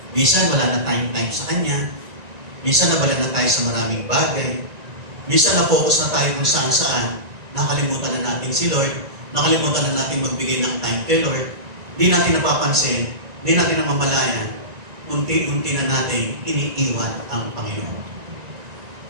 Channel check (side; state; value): left; late; 1.9 ms